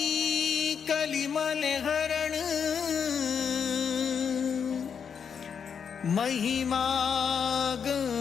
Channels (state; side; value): quieter; right; 7.0 dB